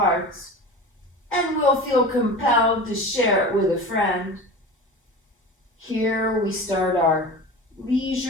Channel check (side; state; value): both; normal; correlation 0.33